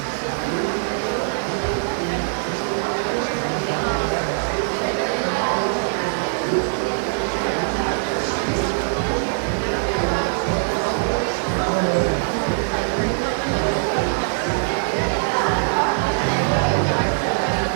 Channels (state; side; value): silent; left; digital silence